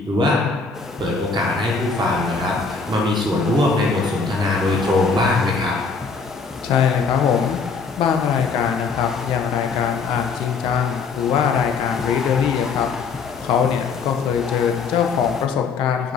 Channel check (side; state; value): right; quieter; 4.8 dB